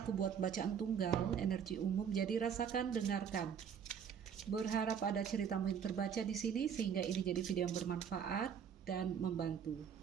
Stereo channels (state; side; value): quieter; left; 7.7 dB